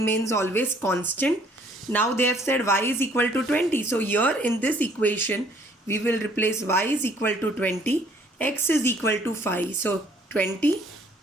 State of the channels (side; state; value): both; normal; correlation 0.61